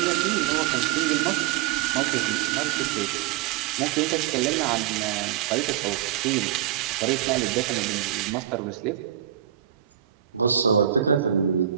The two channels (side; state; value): left; quieter; 11.1 dB